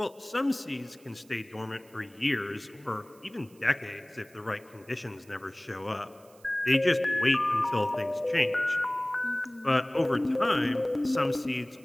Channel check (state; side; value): noise; right; hiss, 28 dB below the sound